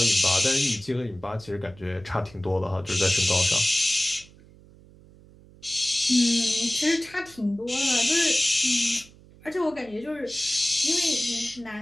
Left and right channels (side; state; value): right; noise; hum, 24 dB below the sound